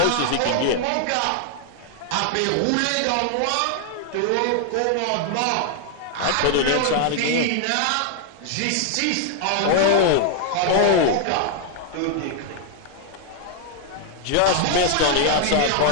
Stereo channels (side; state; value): both; different; correlation 0.00